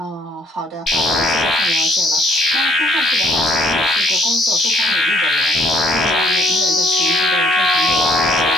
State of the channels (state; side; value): normal; both; correlation 0.64